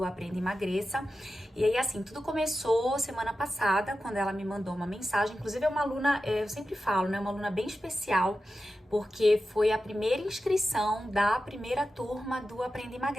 Aprenda e Emagreça. E aí, assim, tudo começou semana passada, quando ela me mandou uma mensagem. Inclusive, é uma aluna, eu sempre falo, né? Uma aluna bem especial, porque foi a primeira inscrição da primeira turma do Aprenda e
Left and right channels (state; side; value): normal; both; correlation 0.92